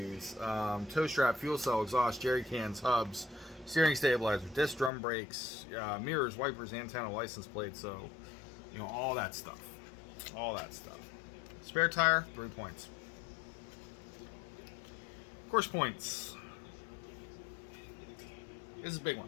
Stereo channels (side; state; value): right; drops out; at 4.9 s